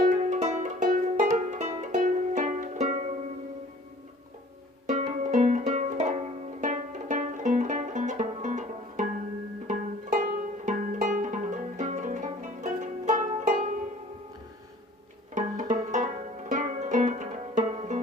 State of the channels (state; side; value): normal; both; correlation 0.50